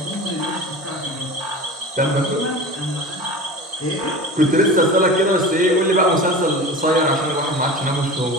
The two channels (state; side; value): normal; both; correlation 0.33